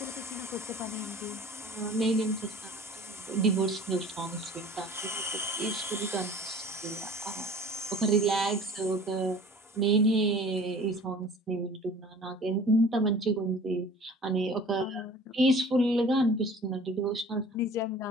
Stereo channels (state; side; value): normal; both; correlation 0.46